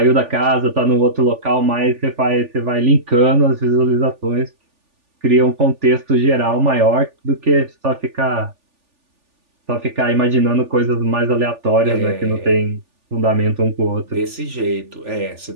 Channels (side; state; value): left; late; 3.4 ms